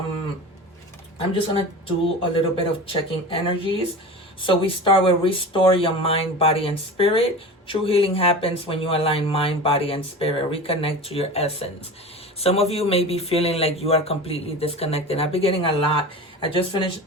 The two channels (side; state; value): both; normal; correlation 0.32